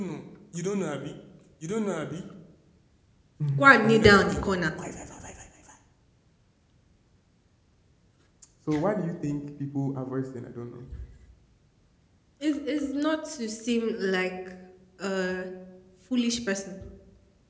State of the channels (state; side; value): identical; both; correlation 1.00